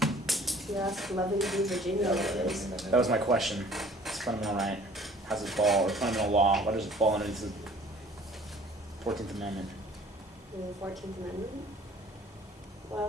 you asked Loving v. Virginia what it is. That was my question. It's fundamental right. How's it fall? Or fundamental law? What does it fall underneath? 14th Amendment? The 14th Amendment?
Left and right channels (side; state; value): both; normal; correlation 0.52